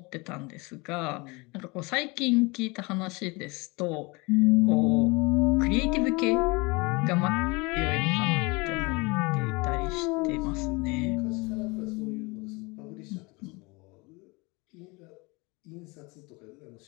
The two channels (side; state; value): right; quieter; 26.3 dB